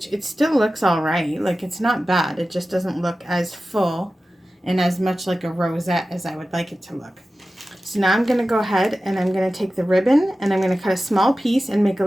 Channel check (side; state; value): both; normal; correlation 0.95